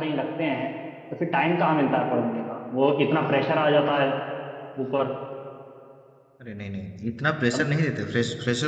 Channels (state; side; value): identical; both; correlation 1.00